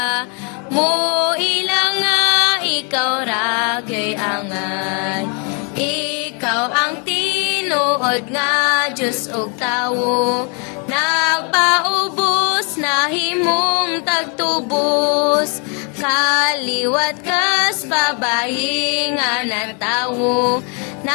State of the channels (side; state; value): right; quieter; 36.4 dB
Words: mo ilang nga ikaw ragyo'y angay. Ikaw ang tinuod nga Diyos ug tawo, nagpaubos na himong tagtubos, kaliwat kas babayi nga natawo,